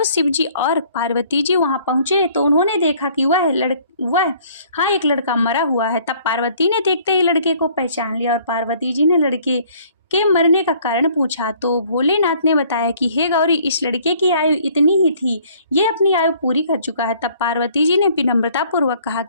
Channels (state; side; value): inverted; both; correlation -0.58